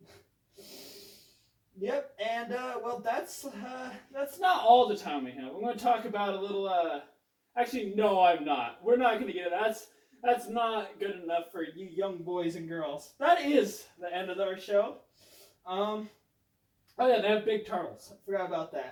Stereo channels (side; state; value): both; identical; correlation 1.00